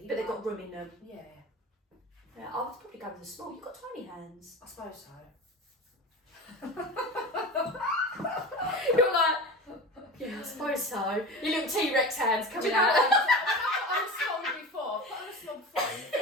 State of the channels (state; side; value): normal; both; correlation 0.31